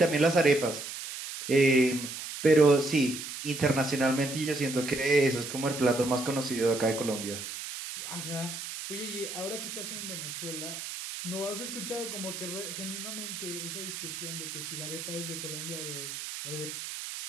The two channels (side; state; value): right; noise; hiss, 8 dB below the sound